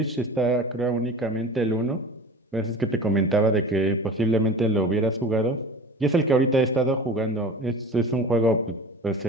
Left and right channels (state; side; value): normal; both; correlation 0.36